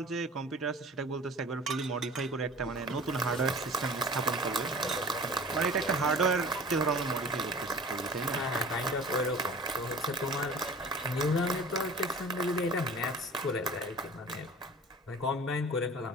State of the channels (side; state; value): both; normal; correlation 0.42